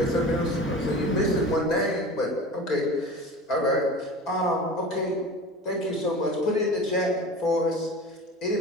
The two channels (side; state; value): both; normal; correlation 0.36